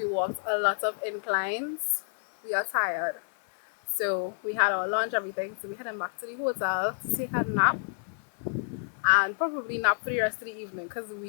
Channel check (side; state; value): right; silent; 58 dB below the other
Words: walked a lot of inclines. We are tired. So we had our lunch, everything. So we headed back to the hotel to take a nap. And probably nap for the rest of the evening because